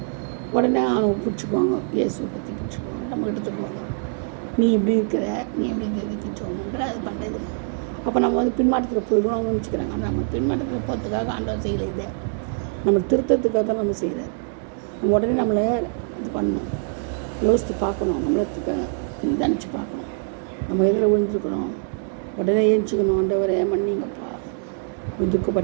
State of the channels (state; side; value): silent; left; 63 dB below the other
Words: உடனே அவனை பிடிச்சிக்குவாங்க, இயேசுவை பற்றி பிடிச்சிக்குவாங்க, நம்மக்கிட்ட சொல்லுவாங்க, நீ இப்படி இருக்கிற, நீ எப்படி இருக்கிறதுக்கு ஜோம் பண்ணுற, அது பண்ணுறது. அப்போ நம்ம பின்மாற்றத்தில் போயிடுவோம் அவங்க நினச்சிக்கிறாங்க. ஆனால் நம்ம பின்மாற்றத்தில் போகிறதுக்காக ஆண்டவர் செய்யலை. இதை நம்ம திருத்தத்துக்காக தான் நம்ம செய்கிறார். நம்ம உடனே நம்மளை இது பண்ணணும், யோசித்து பார்க்கணும், நம்மளுக்கு நிதானித்து பார்க்கணும். நம்ம எதில் விழுந்துருக்கணும், உடனே ஏஞ்சிக்கணும். ஆண்டவரே மன்னிங்கப்பா,